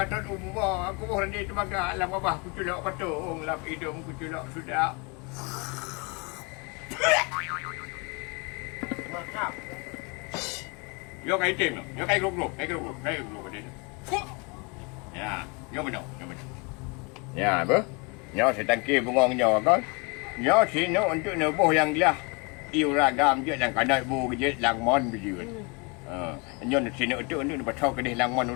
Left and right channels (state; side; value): quieter; right; 30.8 dB